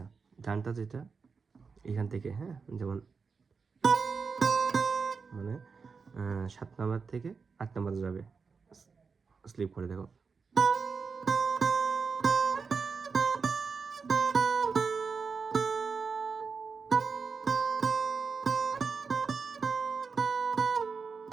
গানটা যেটা এখান থেকে, হ্যাঁ, যেমন মানে 7 নাম্বার থেকে 8 নাম্বারে যাবে, স্লিপ করে দেখো।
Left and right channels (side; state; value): left; quieter; 5.1 dB